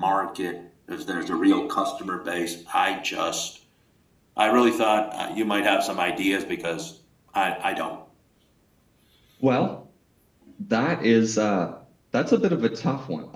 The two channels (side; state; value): both; identical; correlation 1.00